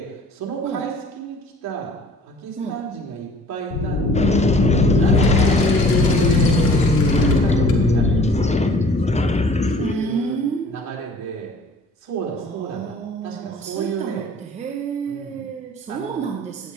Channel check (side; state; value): both; normal; correlation 0.50